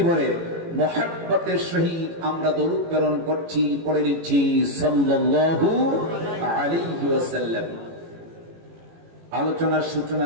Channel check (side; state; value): left; late; 18 ms